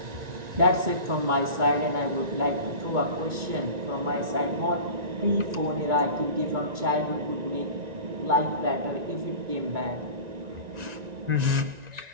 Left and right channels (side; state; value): left; late; 1.9 ms